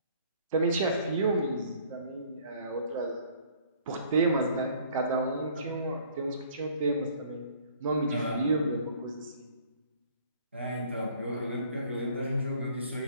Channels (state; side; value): inverted; both; correlation -0.56